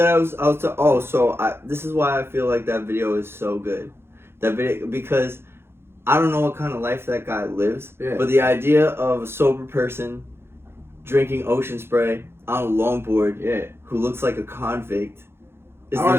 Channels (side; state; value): left; late; 0.12 ms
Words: this is why I feel like that video is so good. That video, because I don't know what kind of life that guy lives, but the idea of a sober person drinking ocean spray on a longboard, who looks like a convict, is